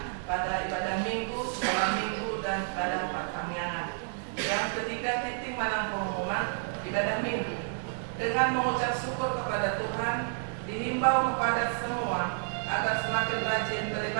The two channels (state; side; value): silent; left; digital silence